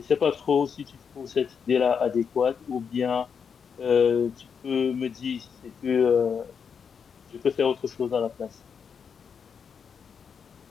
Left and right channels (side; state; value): right; quieter; 6.6 dB